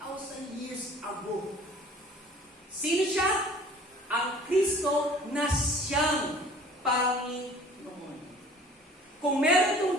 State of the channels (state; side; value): normal; both; correlation 0.49